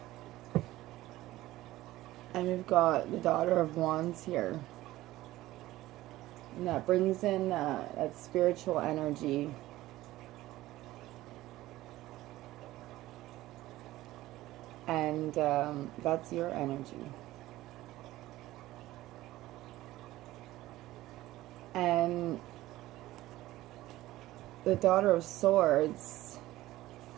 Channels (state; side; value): quieter; left; 16.5 dB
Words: And we've got the Daughter of Wands here. And that brings in that spiritual energy. And that's your energy. And the Daughter of Swords